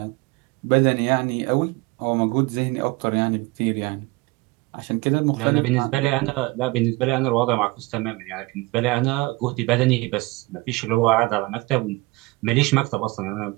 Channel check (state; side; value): quieter; left; 23.5 dB